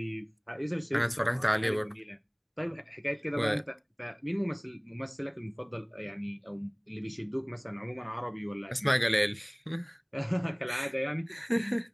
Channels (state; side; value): identical; both; correlation 1.00